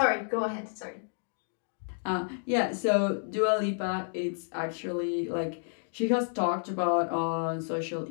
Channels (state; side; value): silent; right; digital silence